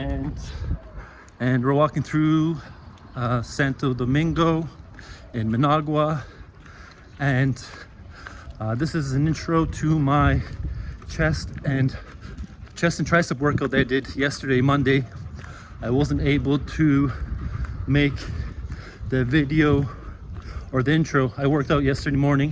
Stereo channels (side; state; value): both; identical; correlation 1.00